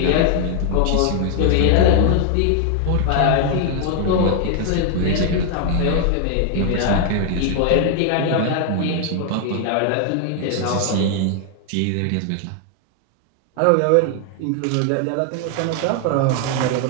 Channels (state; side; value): different; both; correlation 0.00